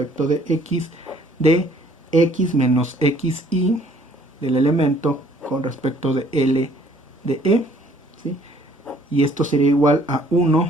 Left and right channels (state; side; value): normal; both; correlation 0.59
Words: de x de x menos xi del elemento con respecto de L de E, ¿sí? Y esto sería igual a